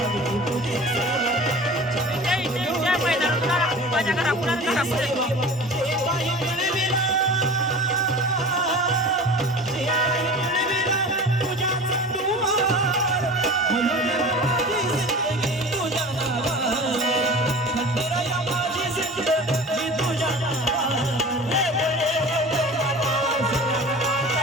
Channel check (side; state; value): both; normal; correlation 0.38